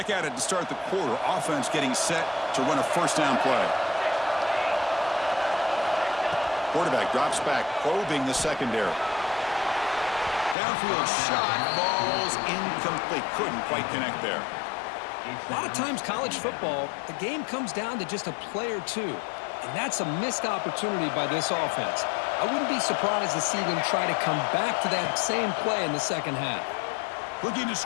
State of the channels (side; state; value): right; drops out; at 10.6 s